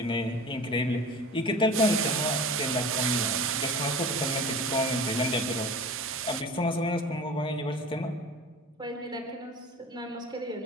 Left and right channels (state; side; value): normal; both; correlation 0.37